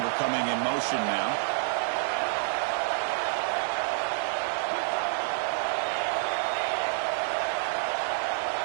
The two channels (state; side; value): silent; left; digital silence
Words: coming in motion now.